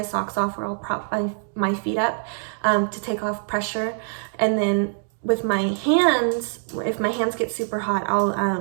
socks off, or I'll prop my feet up to take off pressure. And then with my hands, if my hands get super hot,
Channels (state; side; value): silent; left; digital silence